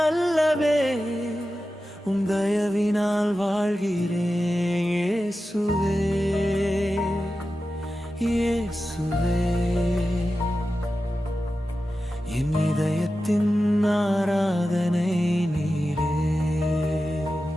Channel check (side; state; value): both; normal; correlation 0.93